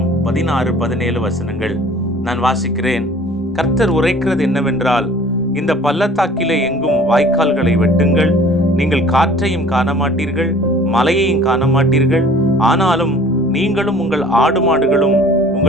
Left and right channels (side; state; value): both; normal; correlation 0.50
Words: 16-17 வசனங்கள். நான் வாசிக்கிறேன். கர்த்தர் உரைக்கிறது என்னவென்றால், இந்த பள்ளத்தாக்கிலே எங்கும் வாய்க்கால்களை வெட்டுங்கள். நீங்கள் காற்றையும் காண மாட்டீர்கள், மலையையும் காண மாட்டீர்கள். ஆனாலும் நீங்களும் உங்கள் ஆடு மாடுகளும்